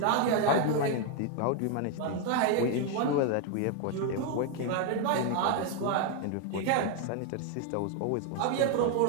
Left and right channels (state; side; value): different; both; correlation 0.01